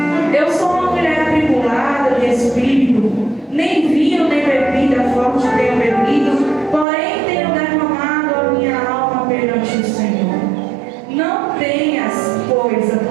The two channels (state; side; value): drops out; left; at 6.9 s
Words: eu sou uma mulher atribulada de espírito, nem vinho nem bebida forte tenho bebido, porém tenho derramado a minha alma perante o Senhor. Não tenhas, pois, a